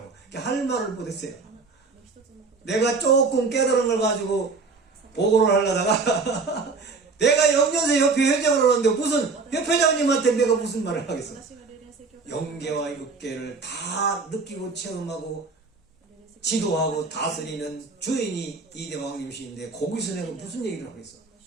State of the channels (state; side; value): quieter; left; 4.2 dB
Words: 할 말을 못했어요. 내가 조금 깨달은 걸 가지고 보고를 하려다가 내가 영년세 협회 회장을 하는데 무슨 협회장님한테 내가 무슨 말을 하겠어. 영계와 육계를 다 느끼고 체험하고 지도하고 다스리는 주인이 이대왕님이신데 거기서 내가 무슨 얘기를 하겠어.